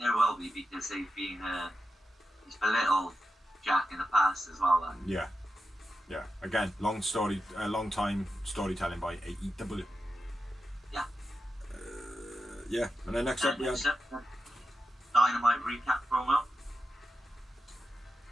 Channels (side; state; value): both; normal; correlation 0.89